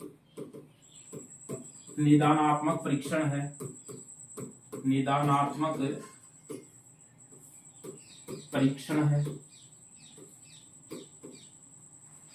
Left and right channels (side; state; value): both; identical; correlation 1.00